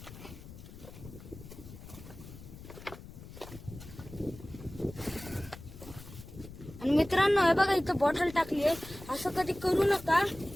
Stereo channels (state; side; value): noise; left; rumble, 15 dB below the sound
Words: आणि मित्रांनो, हे बघा इथं बॉटल टाकली आहे. असं कधी करू नका,